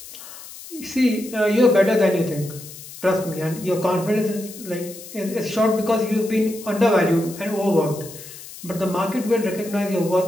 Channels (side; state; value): left; noise; hiss, 15 dB below the sound